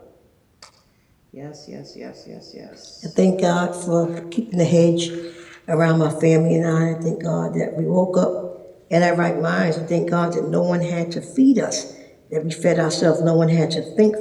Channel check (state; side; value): identical; both; correlation 1.00